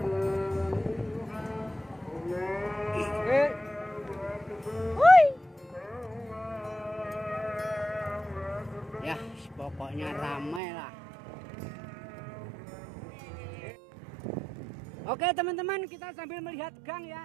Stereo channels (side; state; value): left; drops out; at 10.6 s